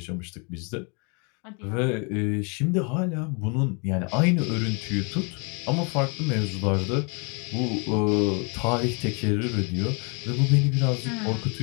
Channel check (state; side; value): quieter; right; 34.7 dB